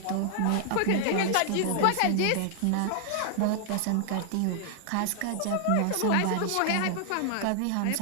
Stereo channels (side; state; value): both; different; correlation 0.00